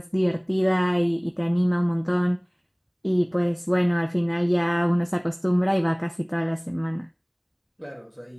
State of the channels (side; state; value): both; identical; correlation 1.00